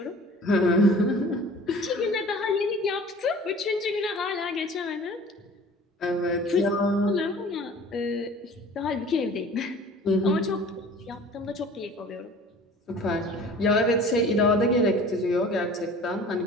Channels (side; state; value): both; normal; correlation 0.45